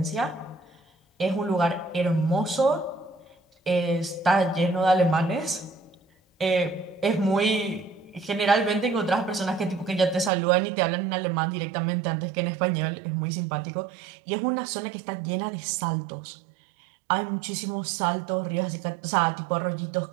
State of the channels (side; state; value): left; drops out; at 10.3 s